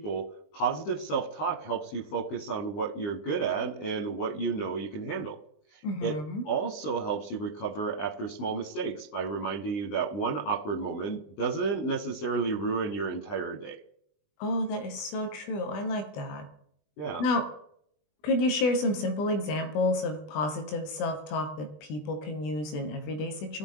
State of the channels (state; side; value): late; right; 20 ms